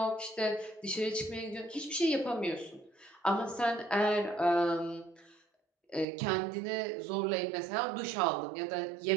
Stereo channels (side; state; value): left; drops out; at 6.1 s